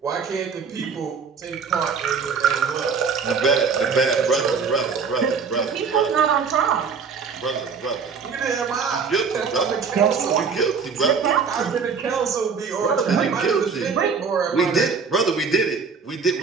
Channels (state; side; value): quieter; left; 5.6 dB